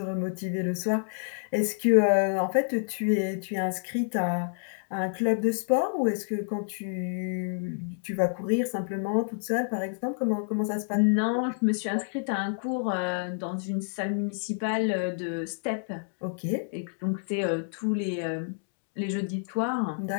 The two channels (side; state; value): right; silent; digital silence